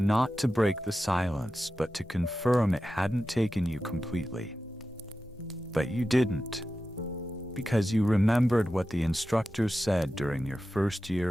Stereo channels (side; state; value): both; normal; correlation 0.92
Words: to break the silence, but to confirm it hadn't taken you completely. But you didn't. Because you remembered what the instructor said during your first year